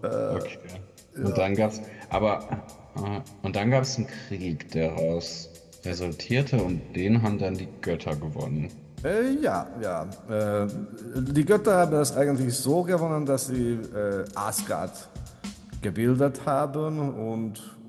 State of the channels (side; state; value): both; identical; correlation 1.00